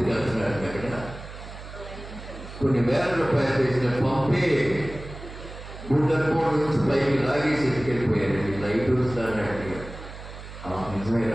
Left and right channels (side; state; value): right; noise; hum, 13 dB below the sound